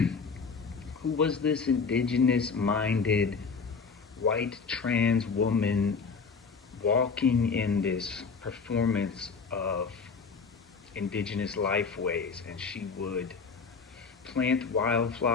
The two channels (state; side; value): quieter; right; 5.2 dB